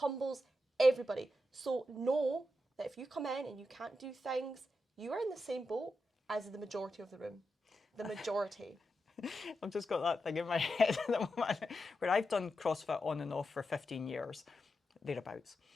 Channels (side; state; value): both; normal; correlation 0.87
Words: everybody. So know that if you come in and you can't do things, you are in the same boat as the majority of the room. The majority. I've just got that thing in my head at the moment where I've done CrossFit on and off for 15 years. thereabouts.